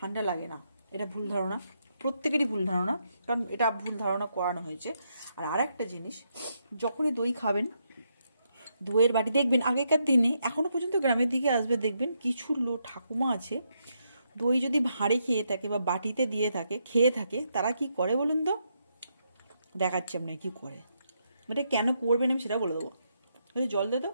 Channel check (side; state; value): both; inverted; correlation -0.79